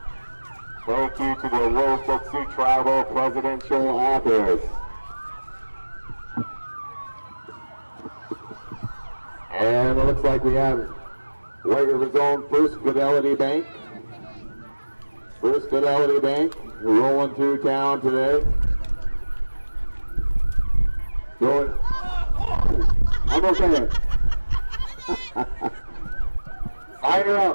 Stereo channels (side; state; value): both; inverted; correlation -1.00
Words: Thank you to the Rosebud Sioux Tribal Presidential Office. And it looks like we have White River's own First Fidelity Bank. First Fidelity Bank rolling through town today. Going. I'm okay. Sign her